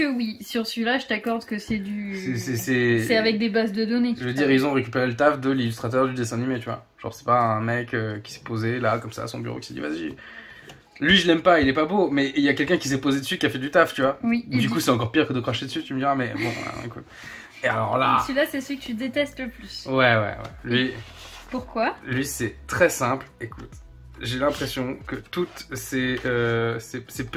oui, sur celui-là je t'accorde que c'est du... C'est avec des bases de données. Je veux dire, ils ont récupéré le taf de l'illustrateur du dessin animé, tu vois. Genre c'est pas un mec qui s'est posé là, comme ça, à son bureau, qui s'est dit vas-y... Lui je l'aime pas, il est pas beau, mais il y a quelqu'un qui s'est posé dessus, qui a fait du taf, tu vois. Oui. Du coup c'est encore pire que de cracher dessus, tu me diras, mais bon, écoute. Et alors là... Celui-là c'est celui que tu détestes le plus. Ouais. Pourquoi? Lui c'est très simple, écoute. J'ai l'impression que toutes ces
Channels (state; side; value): identical; both; correlation 1.00